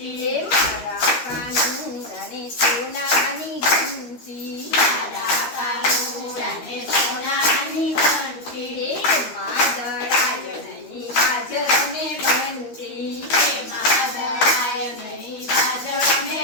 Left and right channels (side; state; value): right; late; 13 ms